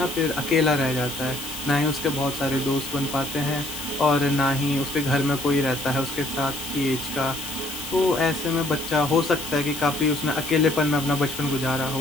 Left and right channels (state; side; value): noise; left; hiss, 9 dB below the sound